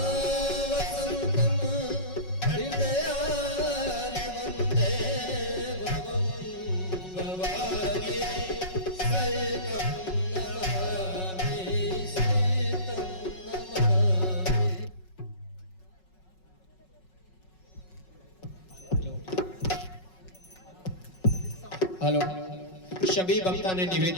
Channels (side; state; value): right; late; 5.4 ms